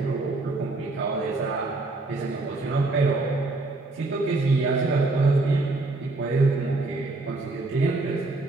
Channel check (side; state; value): left; quieter; 3.2 dB